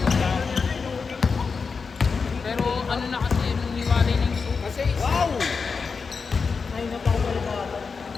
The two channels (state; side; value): quieter; right; 5.1 dB